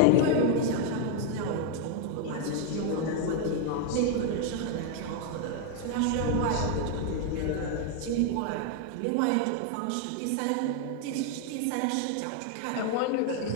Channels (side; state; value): both; different; correlation 0.01